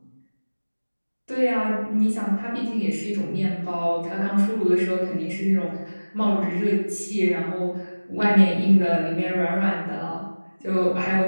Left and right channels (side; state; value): both; inverted; correlation -1.00